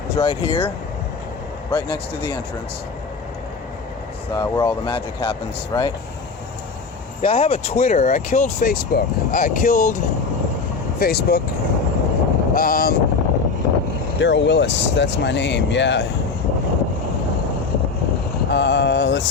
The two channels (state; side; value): quieter; right; 4.7 dB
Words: is right here, right next to the entrance. It's where all the magic happens, right? Yeah, I have a Twitter. I killed Facebook. Daryl Willis, that's my name, yeah. Let's